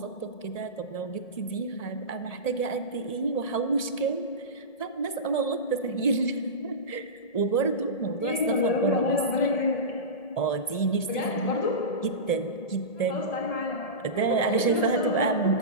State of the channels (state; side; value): late; right; 1.7 ms